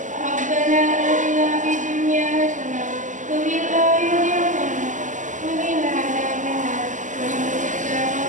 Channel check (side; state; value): left; late; 0.37 ms